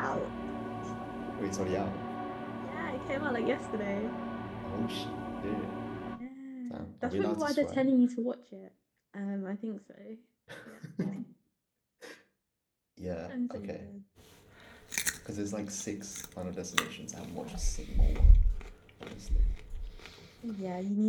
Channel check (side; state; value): both; identical; correlation 1.00